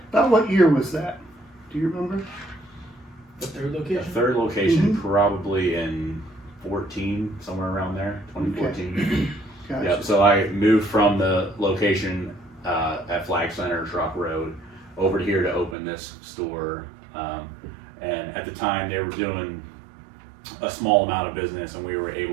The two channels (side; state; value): left; drops out; at 15.8 s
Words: About what year was that? Do you remember? The third location? The third location probably in 14, somewhere around there, 2014. Gotcha. Yep. So I moved from the location at Flag Center, Truck Road, over here to open this store. And at the time, they were doing a small amount of business, and we were